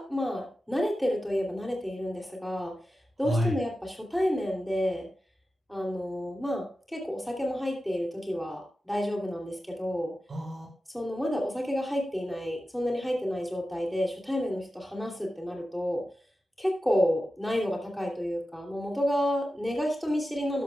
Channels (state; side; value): normal; both; correlation 0.93